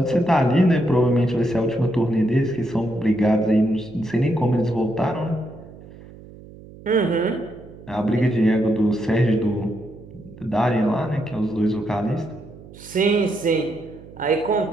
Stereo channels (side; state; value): right; noise; hum, 19 dB below the sound